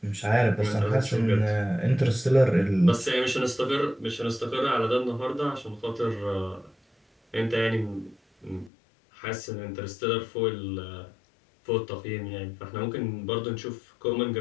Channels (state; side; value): drops out; right; at 8.7 s